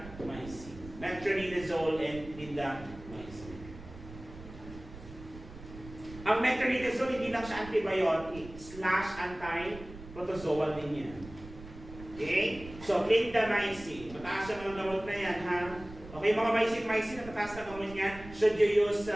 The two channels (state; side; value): noise; right; rumble, 15 dB below the sound